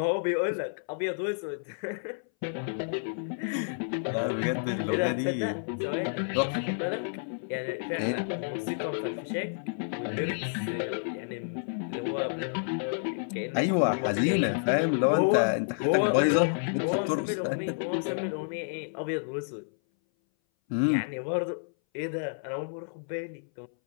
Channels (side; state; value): right; silent; 58 dB below the other